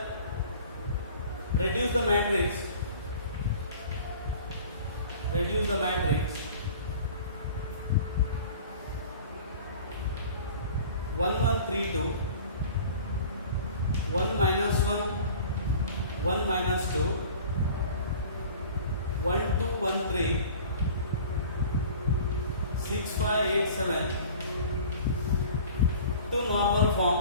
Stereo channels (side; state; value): both; inverted; correlation -0.44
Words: Reduce the matrix. Reduce the matrix 1 1 3 2 1 minus 1 1 minus 2 1 2 1 3 6 5 8 7